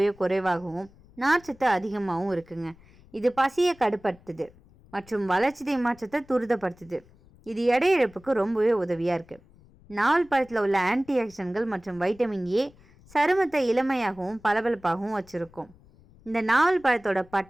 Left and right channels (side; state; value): left; noise; rumble, 26 dB below the sound